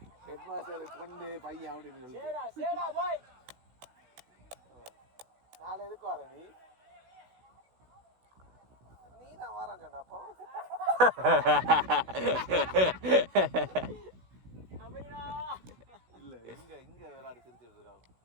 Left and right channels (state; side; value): late; left; 16 ms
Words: ஹெட் மாஸ்டர் பொண்ணு பையன் அப்படின்னு சொல்லி நாளை எதுக்கு வர நீ? நீ தான் வரேன்னு சொன்ன அப்போ. இல்ல இங்க இங்க விளையாடி சிரிச்சிட்டு இருக்கான்.